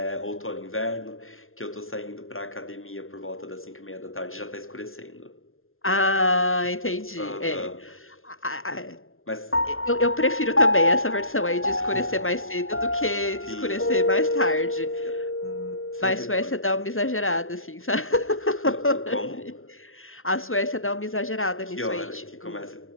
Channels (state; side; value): late; right; 0.61 ms